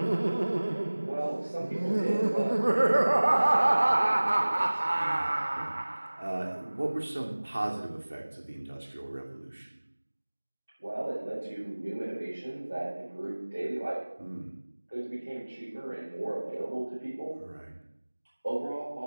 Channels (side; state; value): both; inverted; correlation -1.00